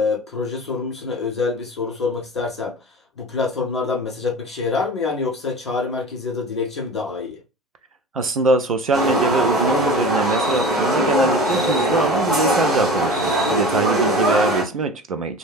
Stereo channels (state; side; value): normal; both; correlation 0.35